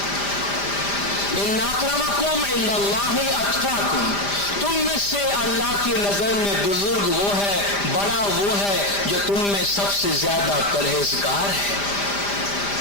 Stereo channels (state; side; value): late; right; 5.0 ms